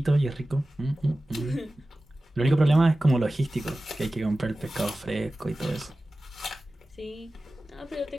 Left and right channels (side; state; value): both; normal; correlation 0.96